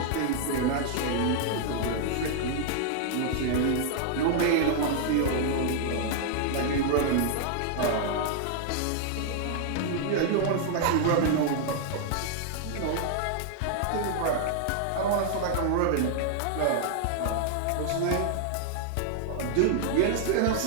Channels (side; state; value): both; different; correlation -0.01